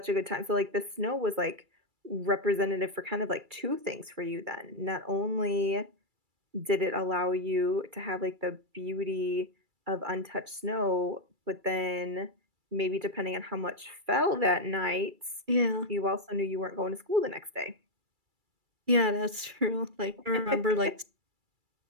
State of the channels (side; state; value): left; late; 2.3 ms